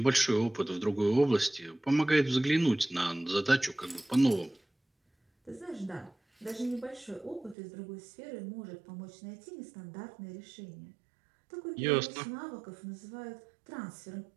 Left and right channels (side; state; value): left; drops out; at 7.6 s